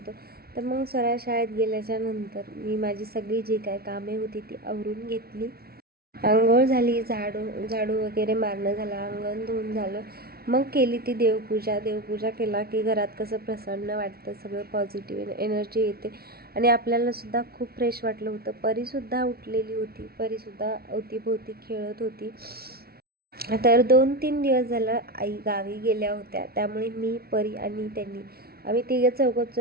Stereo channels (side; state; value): left; late; 0.44 ms